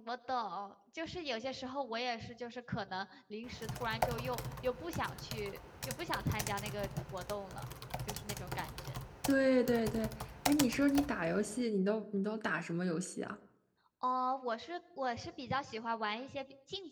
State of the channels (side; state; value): both; identical; correlation 1.00